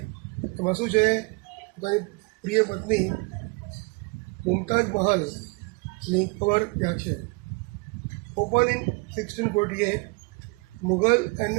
એમાં શું છે, પોતાની પ્રિય પત્ની મુમતાઝ મહલની કબર ત્યાં છે. Open in 1648, Mughal and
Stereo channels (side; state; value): left; quieter; 29.7 dB